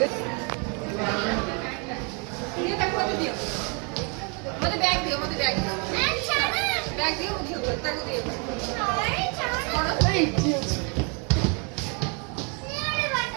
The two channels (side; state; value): left; quieter; 35.1 dB